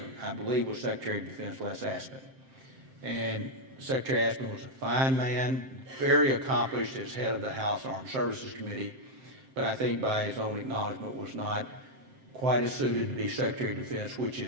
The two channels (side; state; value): left; late; 7.7 ms